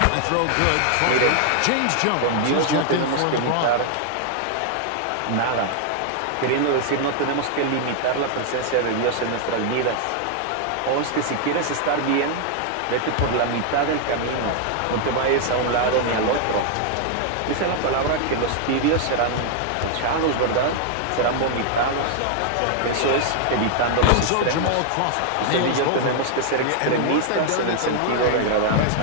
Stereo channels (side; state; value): both; different; correlation 0.00